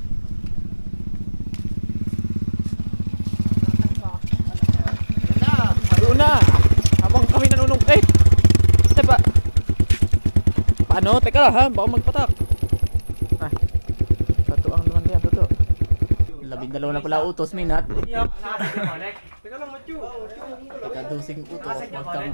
Doon na! Habang kami nanunungkit. Diba? Paano? Teka lang ha, baka magpatak. Ah, tatuang naman yan, totoo. 12 na pala utos, Minat. Teka lang, Matthew. Kadusing utos, huwag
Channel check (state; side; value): inverted; both; correlation -1.00